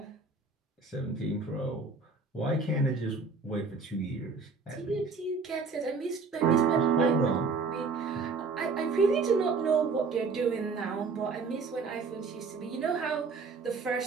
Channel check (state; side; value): quieter; left; 4.6 dB